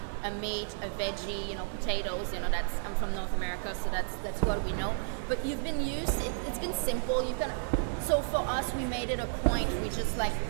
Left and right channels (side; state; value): left; silent; 56 dB below the other